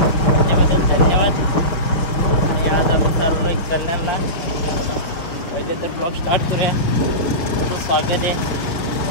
त्याच्याबद्दल धन्यवाद. आणि आज आपण चाललोय कल्याणला. पहिले तर ब्लॉग स्टार्ट करूया. तुमचं स्वागत आहे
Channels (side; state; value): right; late; 5.9 ms